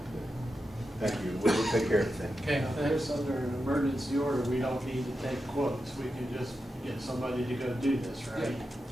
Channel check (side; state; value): both; normal; correlation 0.89